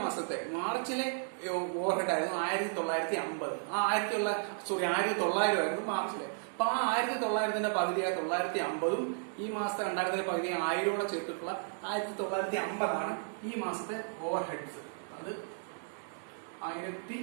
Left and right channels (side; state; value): left; silent; digital silence